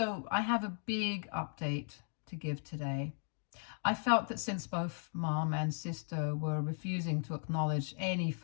I have a big update to give today. I felt that since both mom and sister were refusing to acknowledge any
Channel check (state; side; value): silent; right; 53 dB below the other